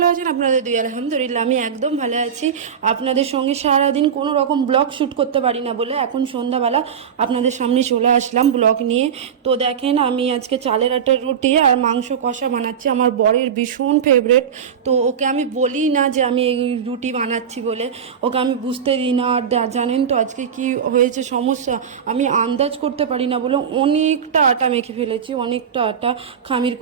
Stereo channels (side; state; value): left; quieter; 7.6 dB